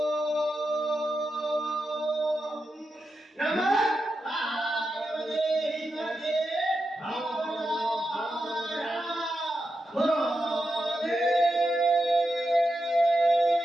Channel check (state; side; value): normal; both; correlation 0.88